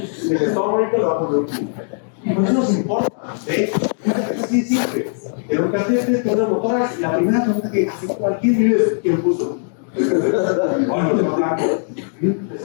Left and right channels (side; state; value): right; silent; digital silence